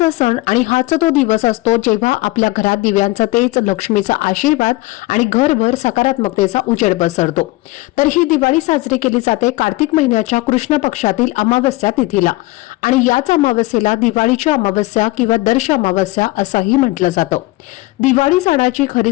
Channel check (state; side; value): quieter; right; 20.2 dB